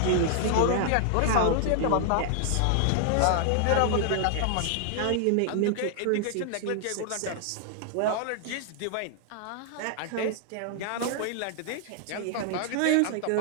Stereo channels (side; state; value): both; different; correlation 0.00